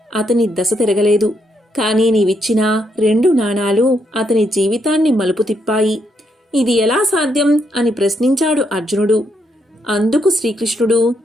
అతని దశ తిరగలేదు. కానీ నీవిచ్చిన 2 నాణాలు అతని జీవితాన్ని మలుపు తిప్పాయి. ఇది ఎలా సాధ్యం అని ప్రశ్నించాడు అర్జునుడు. అందుకు శ్రీకృష్ణుడు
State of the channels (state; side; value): normal; both; correlation 0.77